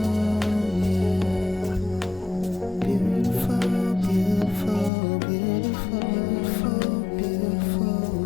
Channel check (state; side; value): drops out; right; at 4.9 s